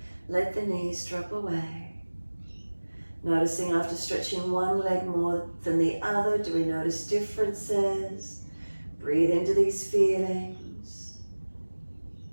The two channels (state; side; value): inverted; both; correlation -1.00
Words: Let the knees drop away. Noticing after stretching one leg more than the other, do we notice differences? Breathe into these feelings.